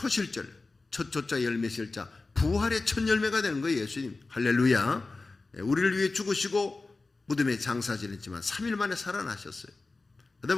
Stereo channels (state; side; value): quieter; right; 3.6 dB